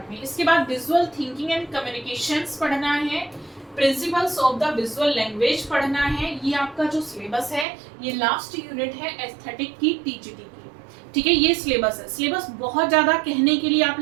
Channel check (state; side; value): drops out; left; at 7.7 s